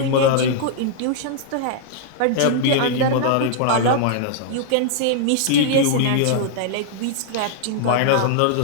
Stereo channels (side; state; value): both; different; correlation -0.01